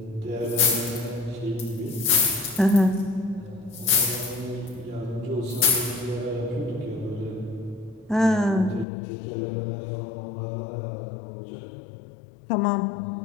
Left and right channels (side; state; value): right; drops out; at 8.8 s